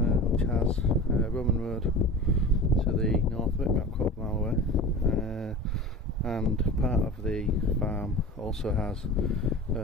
which has Roman Road to the north of it, about a quarter mile away, and part of the farm also has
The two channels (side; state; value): both; normal; correlation 0.34